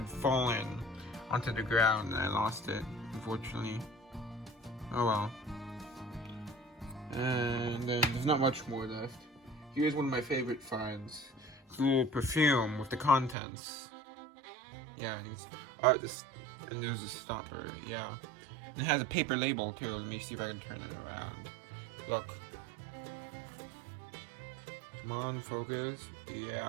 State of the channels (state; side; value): drops out; left; at 13.4 s